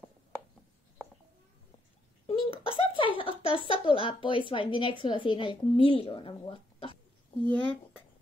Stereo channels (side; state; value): both; normal; correlation 0.75